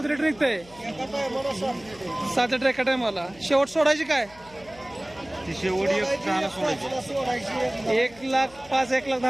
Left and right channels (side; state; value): left; noise; hum, 24 dB below the sound